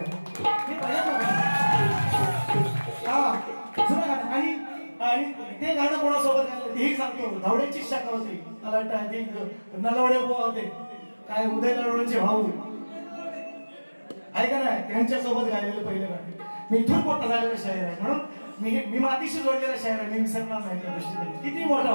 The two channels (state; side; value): inverted; both; correlation -1.00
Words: हा जुनं गाणं. आणि ते गाणं कोणासोबत गायलं तेही सांगतो. धावड्यांची शाखा होती मला वाटतं नलवडे होते काय उदय नलवड्यांचे भाऊ ऐका नाही त्यांच्यासोबत गायलेलं पहिलं गाणं. मी इथून मोठा झालेला शायर आहे म्हणून मी मातीशी जोडलेला शायर आहे. मी विसरणार नाही त्या दृष्टीने. किती मोठा